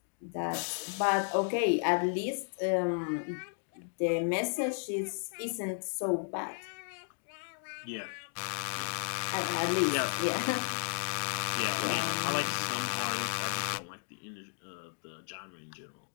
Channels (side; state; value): right; silent; 55 dB below the other